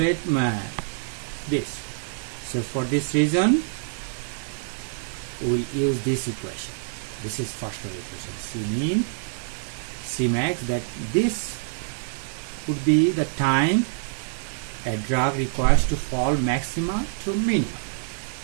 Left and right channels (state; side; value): silent; left; digital silence